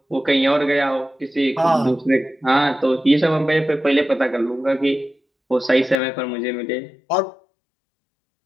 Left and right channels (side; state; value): right; drops out; at 6.0 s